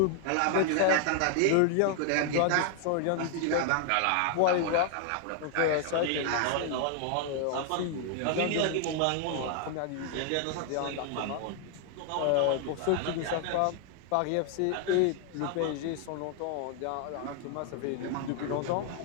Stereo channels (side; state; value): both; different; correlation 0.00